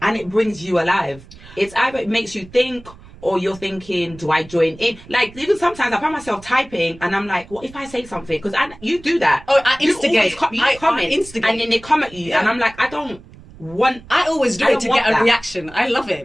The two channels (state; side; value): noise; right; rumble, 21 dB below the sound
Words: And it brings you alive. It's either it makes you think or you're thinking, do I join in? Like, even sometimes I find myself typing and I'm like, what if I say something? Because you do that. Oh, I You instigate. always you comment I instigate. and then they come at you and I'm like, I always do I it don't to want get a that. reaction. I love